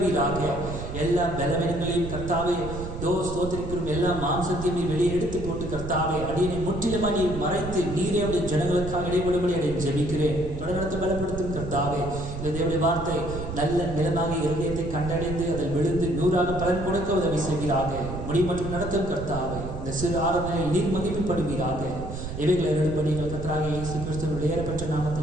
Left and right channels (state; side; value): noise; right; rumble, 8 dB below the sound